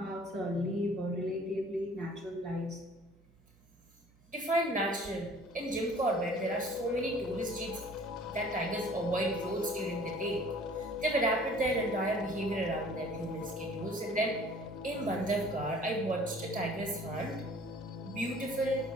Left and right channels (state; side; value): noise; right; hum, 29 dB below the sound